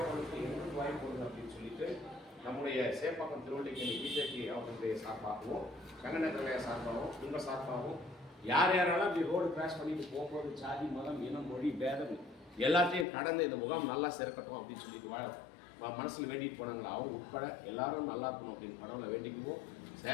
பண்ணுறதுக்கு எங்களுக்கு வாய்ப்பு கொடுங்க அப்படின்னு சொல்லிட்டு நம்முடைய சேப்பாக்கம் திருவல்லிக்கேணி பிஜேபி அவர்களுடைய சார்பாகவும், கங்கநேத்திரலைய சார்பாகவும், உங்கள் சார்பாகவும் யாரெல்லாம் இப்படி ரோடு கிராஸ் பண்ணிட்டு போகும்போது ஜாதி, மதம், இனம், மொழி, பேதம் எல்லாத்தையும் கடந்து இந்த முகாம் நல்லா சிறக்கட்டும் அப்படின்னு சொல்லிட்டு மனசில் வேண்டிட்டு போனாங்களா, அவங்க உட்பட எல்லாரும் நல்லா இருக்கணும் அப்படின்னு கடவுளை வேண்டிக்குவோம்.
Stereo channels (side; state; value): right; drops out; at 13.1 s